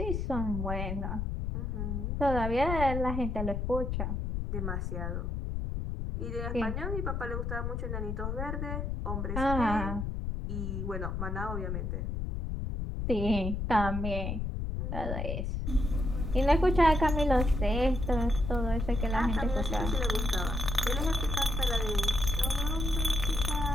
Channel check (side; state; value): left; noise; rumble, 2 dB below the sound